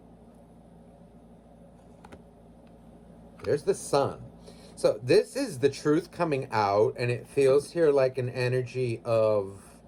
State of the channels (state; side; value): identical; both; correlation 1.00